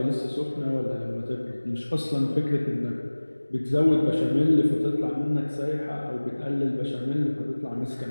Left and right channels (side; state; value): both; inverted; correlation -1.00